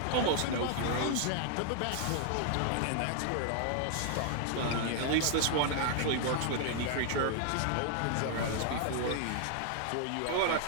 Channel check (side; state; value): both; different; correlation 0.00